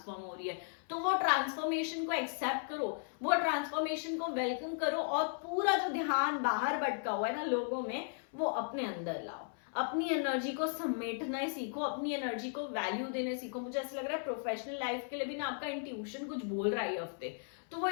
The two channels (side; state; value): right; silent; 54 dB below the other